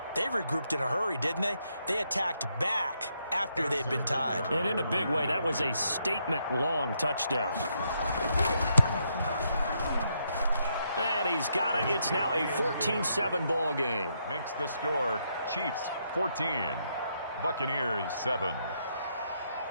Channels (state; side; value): inverted; both; correlation -0.77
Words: They regrouped in a hurry, didn't they? They attacked back after they'd been tied. And in a big way, that was a statement-long touchdown. And he's got it. It's now a 14-7 ball game. Makes the score Chiefs 14, Buccaneers 7.